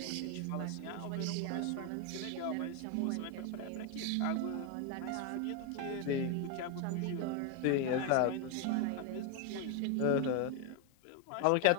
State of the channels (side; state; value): both; different; correlation 0.01